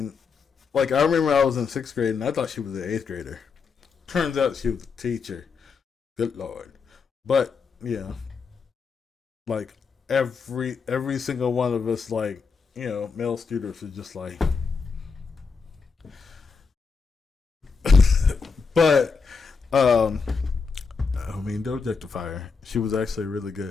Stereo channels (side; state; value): right; quieter; 5.2 dB